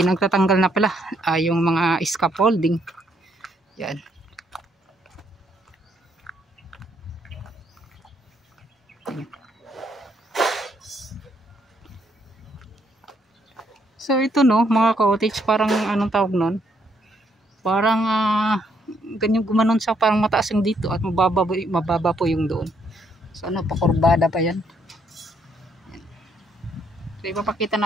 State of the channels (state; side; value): normal; both; correlation 0.72